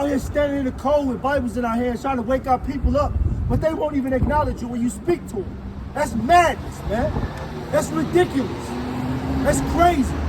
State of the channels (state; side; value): identical; both; correlation 1.00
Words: here standing in the cold with Bibles in our hands trying to wake our people up, but they won't even acknowledge you when you speak to them. That's madness, man. That's ridiculous. That's crazy.